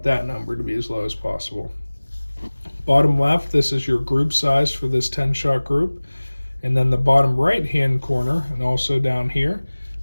that number to be as low as possible. Bottom left, this is your group size for this 10-shot group. And then the bottom right-hand corner, and also down here,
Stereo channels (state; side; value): inverted; both; correlation -1.00